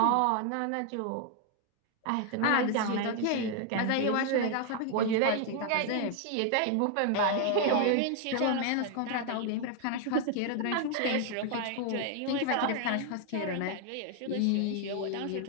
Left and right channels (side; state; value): both; different; correlation 0.00